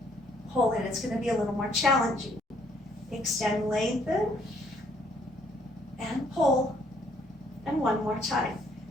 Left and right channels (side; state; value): both; normal; correlation 0.66